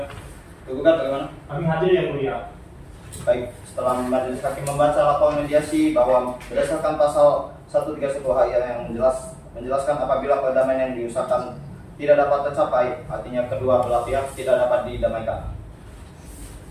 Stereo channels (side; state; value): both; identical; correlation 1.00